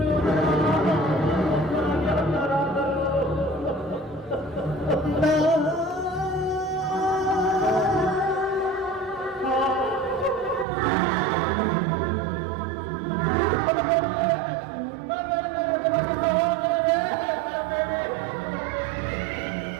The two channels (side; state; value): left; drops out; at 10.7 s